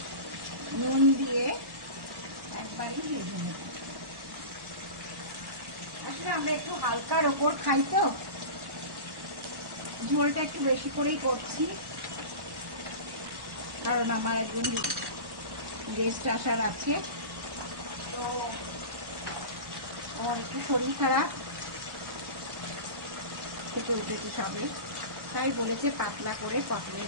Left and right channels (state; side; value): late; left; 1.1 ms